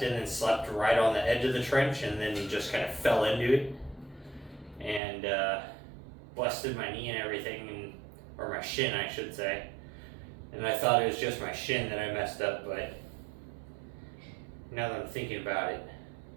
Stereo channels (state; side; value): drops out; left; at 5.0 s